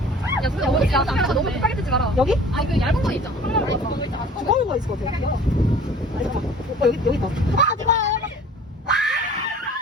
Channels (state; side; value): normal; both; correlation 0.47